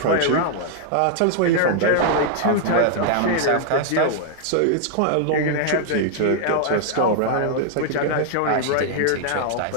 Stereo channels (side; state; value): both; different; correlation -0.01